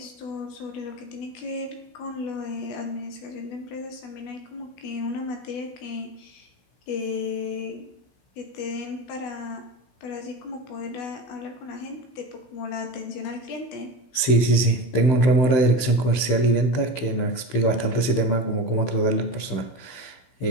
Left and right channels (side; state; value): right; late; 16 ms